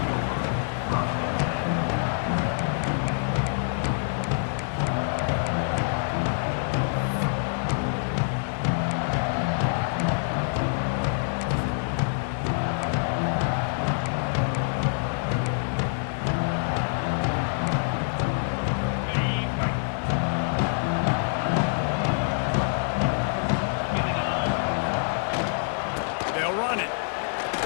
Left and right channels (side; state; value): right; silent; digital silence